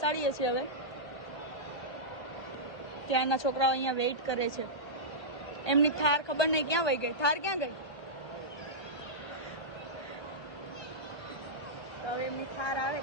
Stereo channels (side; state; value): right; late; 1.3 ms